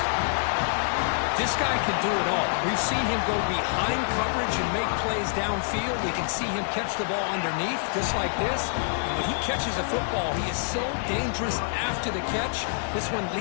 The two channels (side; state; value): right; silent; digital silence